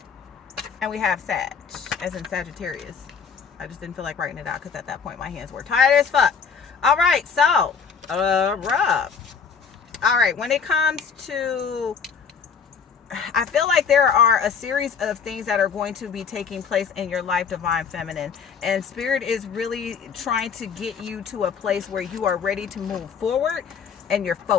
And we have Sag, as in Sagittarius. I just didn't feel like writing it out because at that point my hands were tired as fuck. All right, so, Rob. All right, when it comes to, I feel like there are a series of things that are going to be taking place in your life, Divine Feminine. And Spirit is really trying to get you to a place where you are ready to move forward and you're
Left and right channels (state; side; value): quieter; right; 6.2 dB